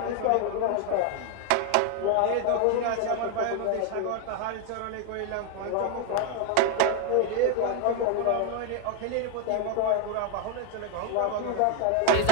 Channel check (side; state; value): both; different; correlation 0.01